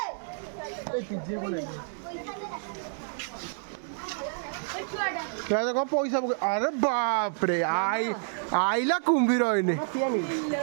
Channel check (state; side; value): silent; left; digital silence